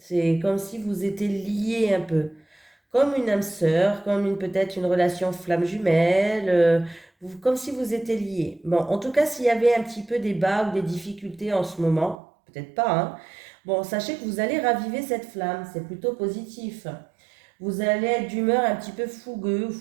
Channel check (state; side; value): drops out; left; at 12.2 s